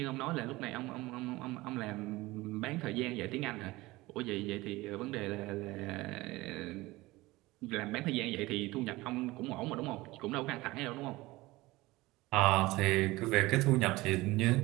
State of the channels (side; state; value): left; quieter; 20.0 dB